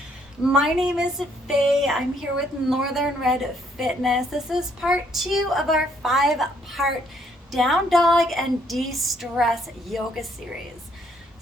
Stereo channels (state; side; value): normal; both; correlation 0.68